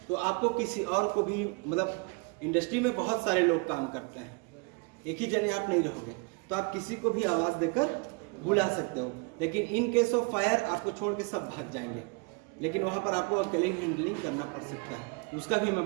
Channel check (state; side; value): quieter; left; 31.0 dB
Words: तो आपको किसी और को भी, मतलब इंडस्ट्री में बहुत सारे लोग काम करते हैं, एक ही जने आप नहीं रहोगे, तो आप किसी को भी आवाज देकर बुला सकते हो। लेकिन इन केस ऑफ फायर आपको छोड़ के सब भाग जाएंगे, लेकिन वहां पर आपको अकेले हैंडलिंग करना पड़ सकता है, उसका भी मैं